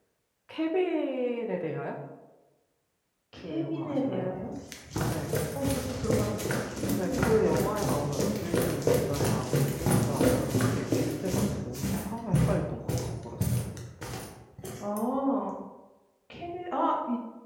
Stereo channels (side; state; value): both; identical; correlation 1.00